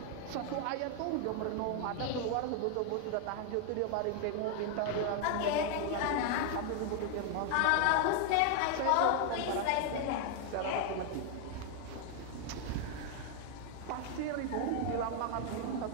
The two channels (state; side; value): different; both; correlation 0.00